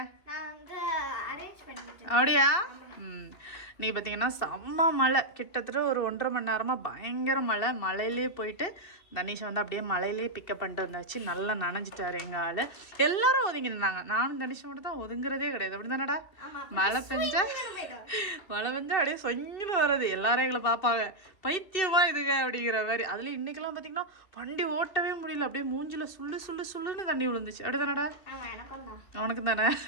நான் வந்து அரேஞ்ச் பண்ணிட்டேன். அப்படியா? நீ பார்த்தீங்கன்னா செம்ம மழை, கிட்டத்தட்ட ஒரு 1.5 மணி நேரமாக பயங்கர மழை. மழையிலே போயிட்டு தனிஷை வந்து அப்படியே மழையிலே பிக்கப் பண்ணிட்டு வந்தாச்சு. நல்லா நனைஞ்சிட்டாரு எங்கள் ஆள். எல்லாரும் ஒதுங்கி நின்னாங்க. நானும் தனிஷை மட்டும் தான் ஒதுங்குறதே கிடையாது. அப்படி தானடா? மழை பெஞ்சா அப்படியே சொங்கின்னு வர்றது. எல்லாரும் எங்களை பார்ப்பாங்க, பைத்தியமா இதுங்க அப்படிங்கிற மாதிரி. அதுலேயும் இன்னைக்கெல்லாம் பார்த்தீங்கன்னா வண்டி ஓட்டவே முடியல. அப்படியே மூஞ்சில் சுள்ளுன்னு தண்ணி விழுந்துச்சு. அப்படி தானடா? உனக்கு தானே?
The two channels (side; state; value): right; late; 2.7 ms